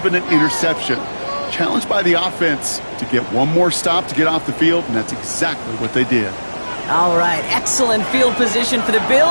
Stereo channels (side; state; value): both; inverted; correlation -1.00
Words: an interception. Challenged by the offense to get one more stop to get off the field, and that's exactly what they did. All right, excellent field position for the